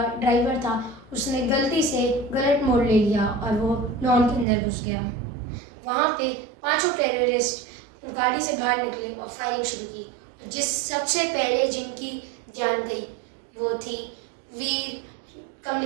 था उसने गलती से गलत मोड़ ले लिया और वो लॉन के अंदर घुस गया। वहाँ पे 5 टेररिस्ट गाड़ी से बाहर निकले और फायरिंग शुरू की। सबसे पहले जिनकी जान गई वो थी वीर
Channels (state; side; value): drops out; left; at 4.5 s